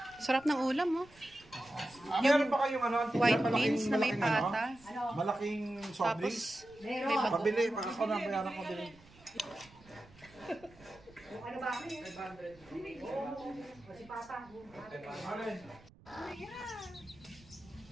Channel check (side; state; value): right; noise; rumble, 25 dB below the sound